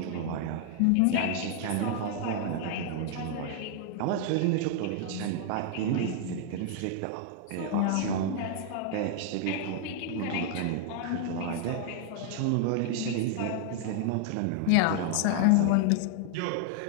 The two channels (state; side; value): different; both; correlation 0.00